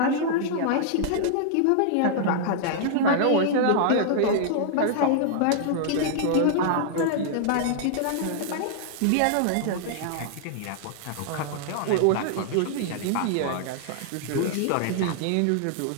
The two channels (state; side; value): different; both; correlation -0.01